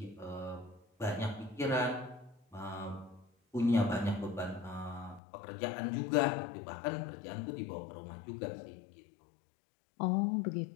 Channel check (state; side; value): drops out; right; at 5.2 s